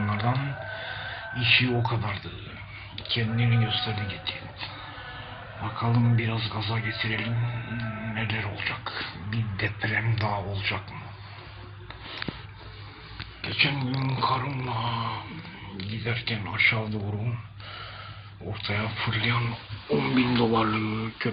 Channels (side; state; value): both; identical; correlation 1.00